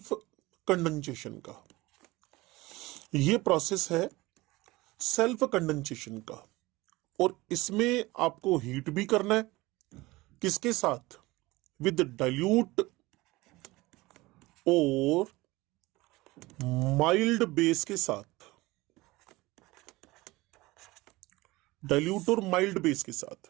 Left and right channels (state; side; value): quieter; left; 20.6 dB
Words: कंडेंसेशन का। और इसमें आपको हीट भी करना है। किसके साथ? विद डाइल्यूट और माइल्ड बेस के साथ।